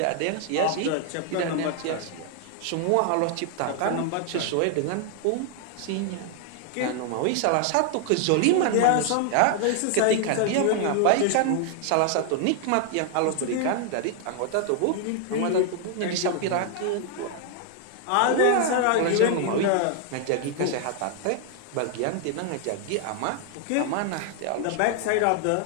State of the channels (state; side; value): different; both; correlation 0.00